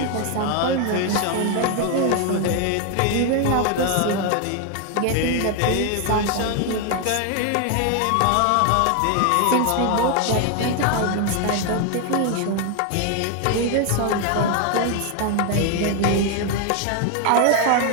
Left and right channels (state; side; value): different; both; correlation 0.01